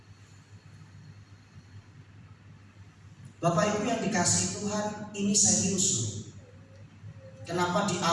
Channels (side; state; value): both; identical; correlation 1.00